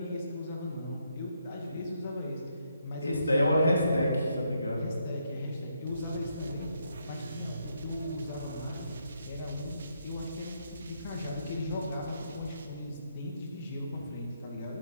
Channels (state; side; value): inverted; both; correlation -0.76